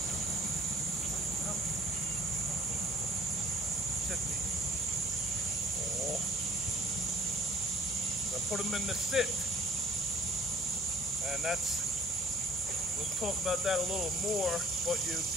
Put them in the sit, and we'll talk about that a little more, but you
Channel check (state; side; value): normal; both; correlation 0.53